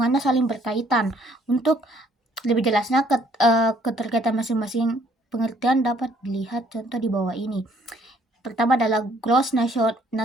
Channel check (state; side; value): normal; both; correlation 0.63